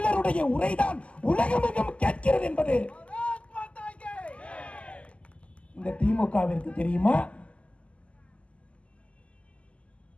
உரைதான் உலகமெங்கும் கேட்கிறது என்பது இந்த திமுகவிற்கு தெரியுமா?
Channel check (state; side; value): late; right; 0.059 ms